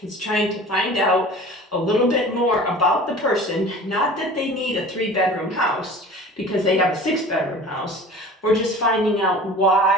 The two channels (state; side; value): normal; both; correlation 0.41